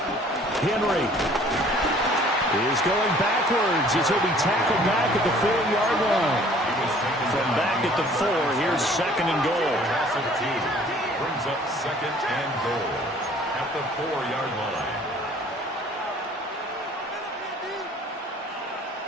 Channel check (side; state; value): both; normal; correlation 0.54